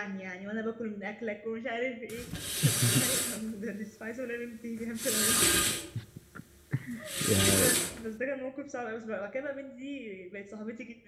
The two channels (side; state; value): both; identical; correlation 1.00